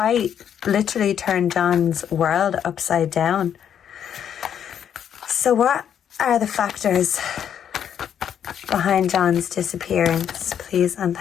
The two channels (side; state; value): right; quieter; 9.0 dB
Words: literally turned Jon's world upside down. So what are the factors behind Jon's disappearance, please? And